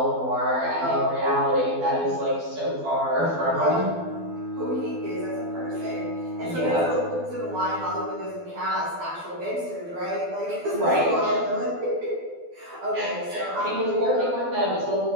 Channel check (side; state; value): left; late; 12 ms